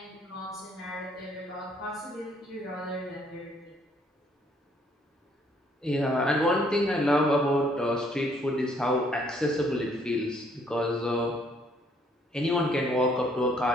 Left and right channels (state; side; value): normal; both; correlation 0.65